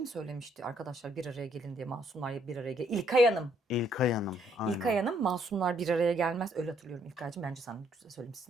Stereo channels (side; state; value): both; normal; correlation 0.69